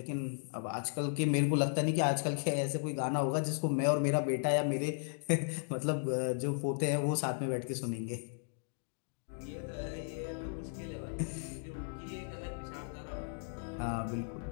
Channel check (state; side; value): silent; right; digital silence